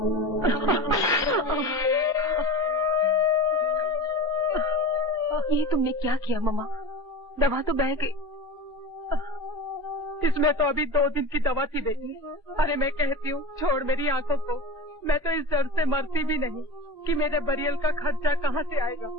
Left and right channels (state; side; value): normal; both; correlation 0.30